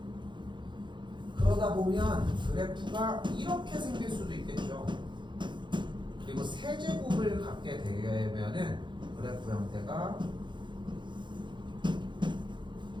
그러다 보면 그래프가 이렇게 생길 수도 있겠죠. 그리고 세제곱을 갖게 되면은 그래프 형태가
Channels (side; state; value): left; late; 0.23 ms